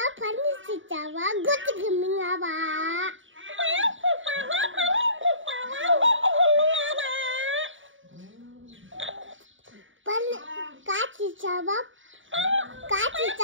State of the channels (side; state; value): left; late; 0.56 ms